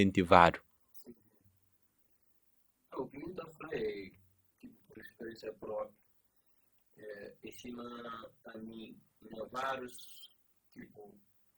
Sim, sim. O que me está falando é, tipo, por experiência própria, em cima a mim, na vários, tipo,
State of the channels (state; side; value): identical; both; correlation 1.00